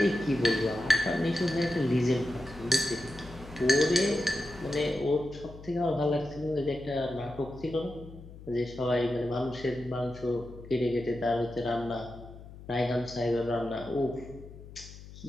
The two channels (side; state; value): left; noise; hum, 16 dB below the sound